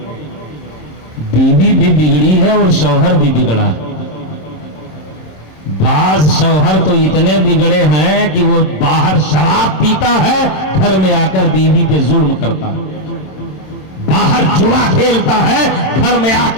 بیوی بھی بگڑی ہے اور شوہر بھی بگڑا ہے۔ بعض شوہر تو اتنے بگڑے ہیں کہ وہ باہر شراب پیتا ہے، گھر میں آ کر بیوی پہ ظلم کرتا ہے، باہر جوا کھیلتا ہے، گھر میں آ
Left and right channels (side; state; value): right; late; 27 ms